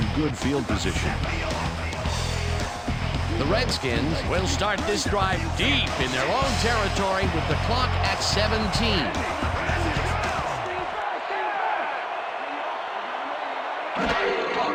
good field position. The Redskins will start this drive deep in their own territory with the clock at 17.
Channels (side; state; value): both; identical; correlation 1.00